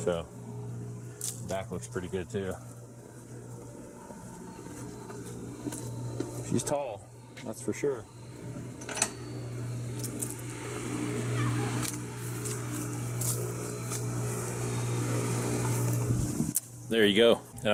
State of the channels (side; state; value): both; identical; correlation 1.00